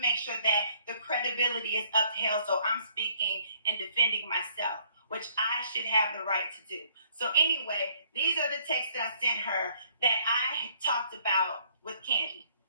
sure that the credibility is upheld. So I'm speaking and defending myself, which I should have the right to do. So anyway, these are the texts that I sent her that I talked about with Kandi.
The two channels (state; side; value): inverted; both; correlation -0.64